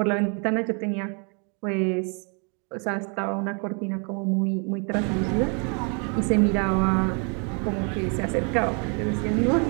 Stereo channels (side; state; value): left; quieter; 37.1 dB